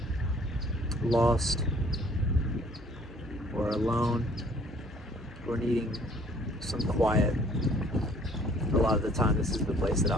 lost or alone or needing some quiet, a lot of the time this is the place that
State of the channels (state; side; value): normal; both; correlation 0.57